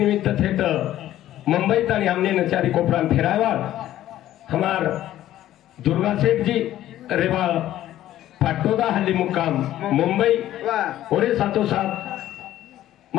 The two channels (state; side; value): quieter; right; 13.3 dB